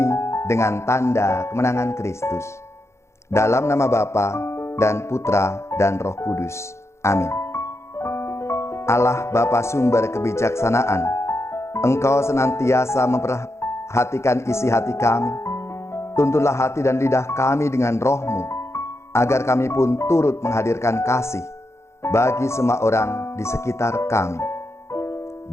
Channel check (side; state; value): right; late; 0.13 ms